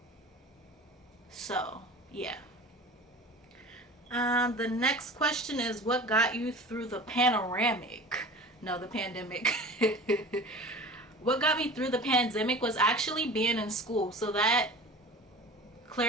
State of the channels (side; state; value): both; normal; correlation 0.38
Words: So yeah. The next question is, what got you through the pandemic? What got me through the pandemic was actually being in school. So that